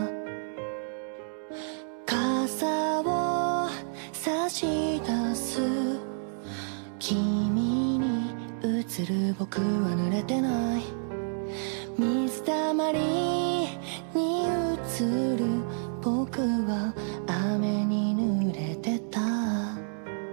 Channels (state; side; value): silent; left; digital silence